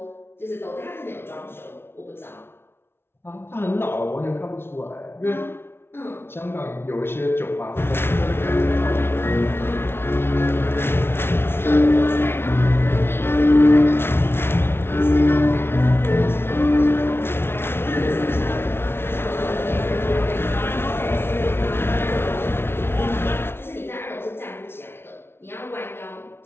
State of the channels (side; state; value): right; late; 0.12 ms